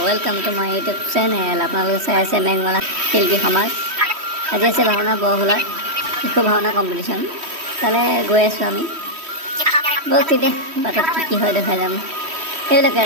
Welcome to my YouTube channel. আপোনালোকে চাই আছে মেঘমালা শিল্পী সমাজ। আজি আছে ভাওনা বৰহোলা শিশু ভাওনা কম্পিটিশ্যন। তালৈ গৈ আছোঁ আমি। ব'লক তেতিয়া বাটত কি হয় দেখাই যাম। সেইবিলাকে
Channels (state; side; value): late; left; 3.1 ms